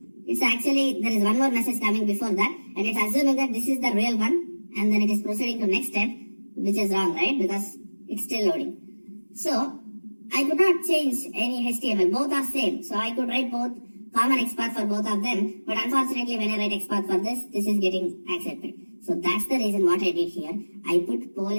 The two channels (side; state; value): both; inverted; correlation -1.00